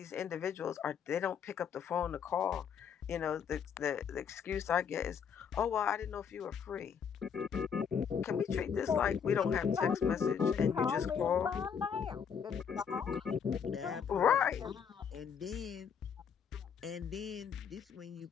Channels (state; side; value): quieter; right; 7.2 dB